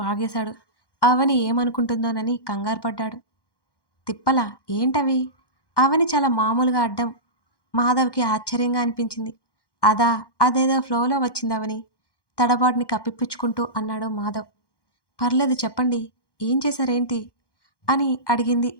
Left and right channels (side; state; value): right; late; 1.1 ms